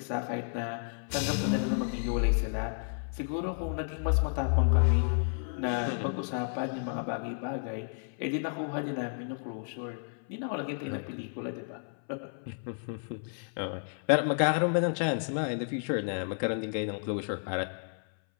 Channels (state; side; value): silent; right; 56 dB below the other